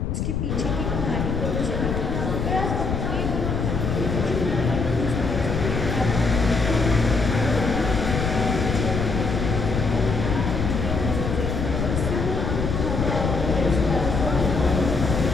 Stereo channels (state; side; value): noise; left; rumble, 1 dB below the sound